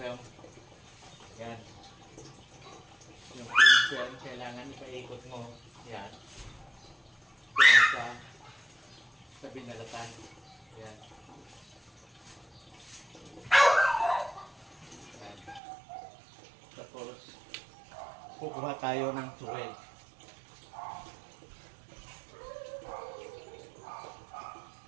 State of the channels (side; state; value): left; drops out; at 15.6 s